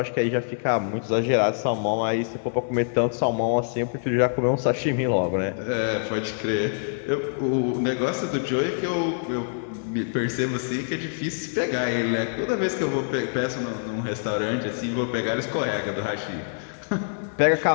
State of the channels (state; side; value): silent; right; digital silence